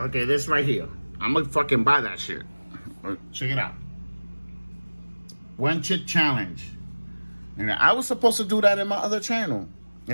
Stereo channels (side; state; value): both; inverted; correlation -1.00